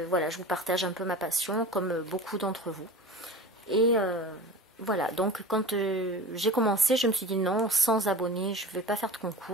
voilà, je vous partage un peu ma passion comme beaucoup d'entre vous. Et voilà, donc quand j'ai commencé, je me suis dit non, 100 abonnés, je ne vais pas faire de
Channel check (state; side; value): normal; both; correlation 0.35